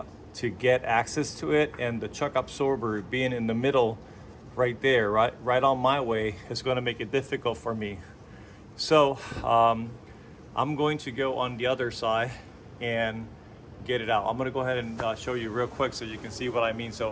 to get access to it, and the chuck absorber being in the middle right there, right on my way, is going to make it difficult for me. So I'm going to go on the other side and get it out. I'm going to go ahead and show you real quick so you can see what I mean.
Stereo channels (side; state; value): both; identical; correlation 1.00